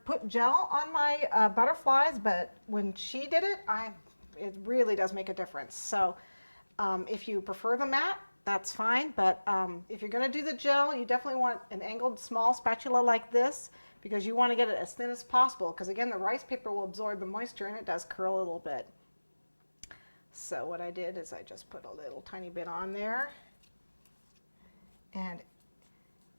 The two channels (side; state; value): both; inverted; correlation -1.00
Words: put gel on my butterflies, but when she did it, it really does make a difference. So if you prefer the matte, that's fine, but if you're going to do the gel, you definitely want an angled small spatula like this, because you want to get it as thin as possible, because again the rice paper will absorb the moisture and it does curl a little bit. So what I did is I just put a little tiny bit on there, and